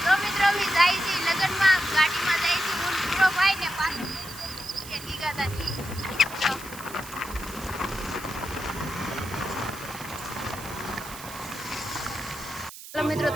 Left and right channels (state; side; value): noise; right; hiss, 14 dB below the sound